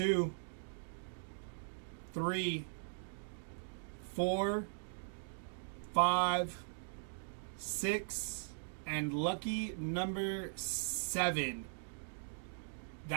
3, 4, 5, 6, and lucky number 7.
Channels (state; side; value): silent; left; digital silence